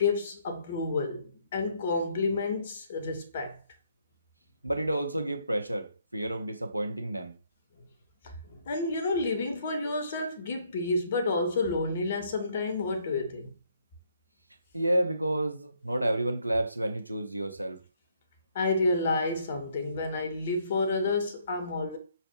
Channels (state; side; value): inverted; both; correlation -0.69